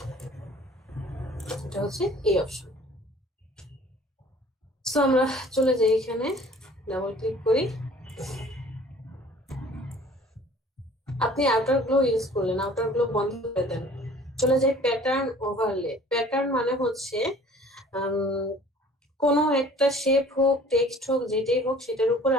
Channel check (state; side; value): normal; both; correlation 0.50